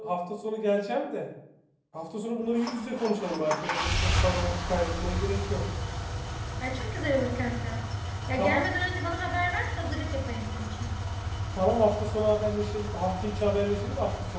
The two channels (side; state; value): both; identical; correlation 1.00